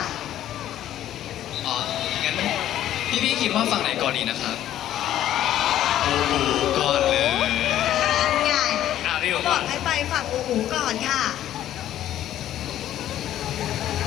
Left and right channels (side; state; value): right; quieter; 12.2 dB